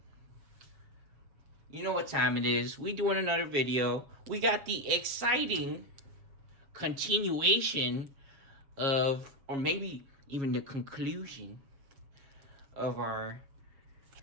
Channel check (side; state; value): left; late; 7.2 ms